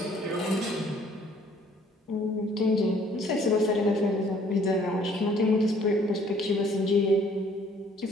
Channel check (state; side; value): normal; both; correlation 0.59